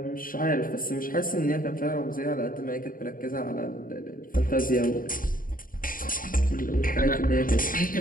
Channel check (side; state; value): right; late; 0.41 ms